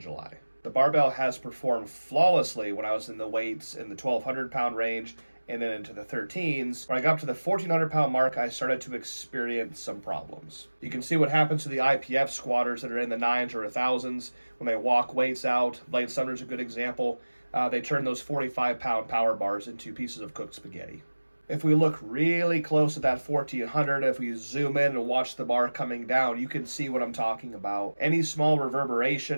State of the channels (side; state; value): both; inverted; correlation -1.00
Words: The barbell has performed flawlessly when I was in the weights in the 1,200 pound range and then into the 13s. When I got up to the 1,400 pound mark, I started to experience some problems. You can see what happens to the IPF squatters that are in the 9s or 1,000s when they walk weights out. Blade Sumner is a good example. They turn those 45 pound power bars into pieces of cooked spaghetti. If we look really close at that 1,400, if we zoom in and watch the bar coming down, you can see what I'm talking about. Any small